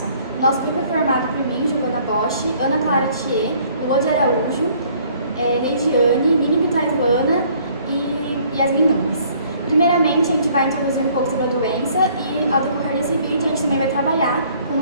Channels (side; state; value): both; inverted; correlation -0.59